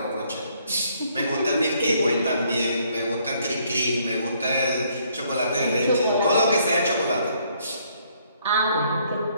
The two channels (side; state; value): both; inverted; correlation -0.67